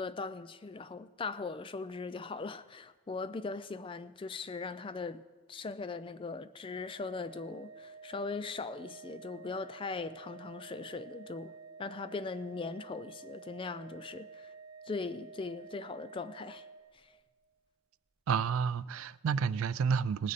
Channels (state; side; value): normal; both; correlation 0.44